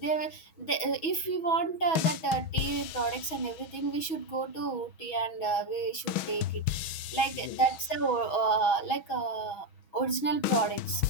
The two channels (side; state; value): right; late; 6.2 ms